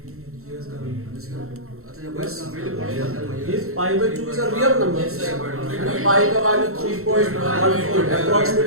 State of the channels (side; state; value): left; late; 0.63 ms